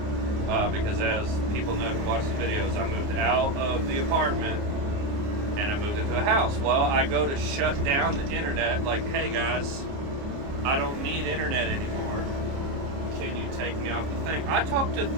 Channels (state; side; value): late; left; 29 ms